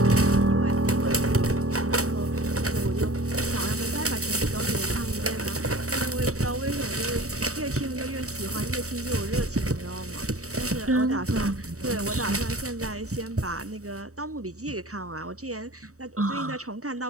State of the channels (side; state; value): left; late; 0.65 ms